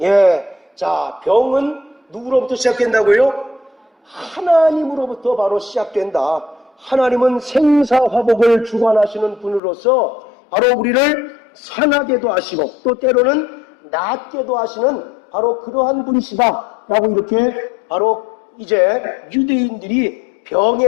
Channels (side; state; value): right; drops out; at 9.6 s